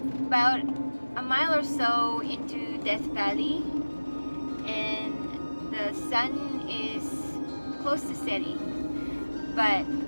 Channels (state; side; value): inverted; both; correlation -1.00